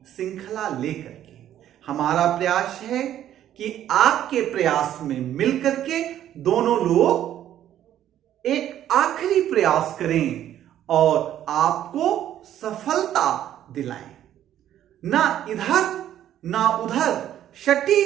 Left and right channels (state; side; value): quieter; left; 11.5 dB